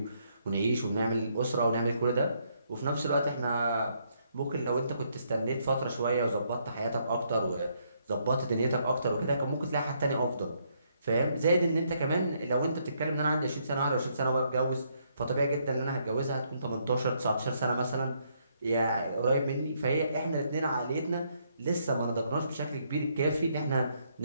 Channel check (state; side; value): inverted; both; correlation -0.73